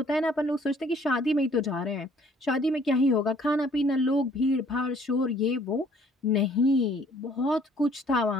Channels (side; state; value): both; normal; correlation 0.59